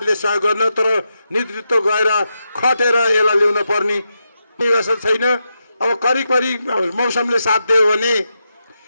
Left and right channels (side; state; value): both; inverted; correlation -0.86